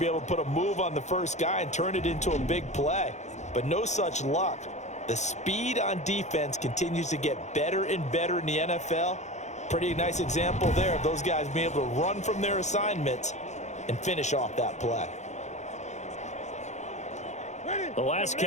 able to put a move on the first guy and turn it into a big play. But no such luck. The speed on defense continues to get better and better in the NFL. Pretty nice example there of those guys being able to run from their assignments and finish off that play. The last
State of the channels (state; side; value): late; right; 0.34 ms